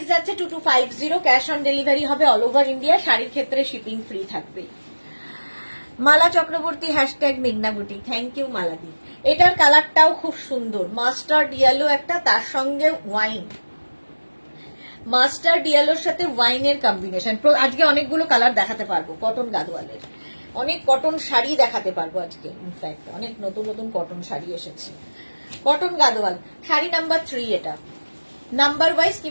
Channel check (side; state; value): both; inverted; correlation -1.00